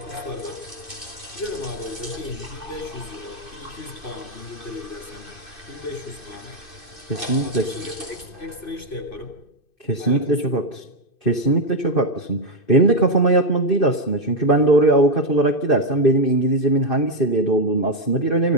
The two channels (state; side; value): late; right; 2.6 ms